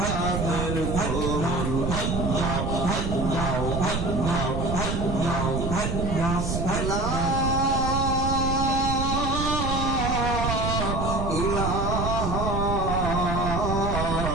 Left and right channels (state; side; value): noise; right; rumble, 1 dB below the sound